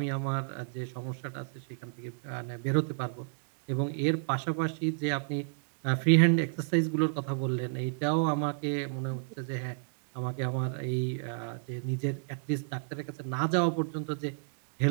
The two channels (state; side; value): silent; left; digital silence